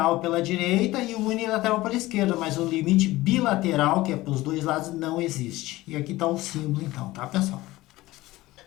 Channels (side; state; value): right; quieter; 18.2 dB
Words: pela direita e o unilateral pela esquerda, mas o limite bilateral, que é para os dois lados, não existe. E aqui está o símbolo, então, tá, pessoal?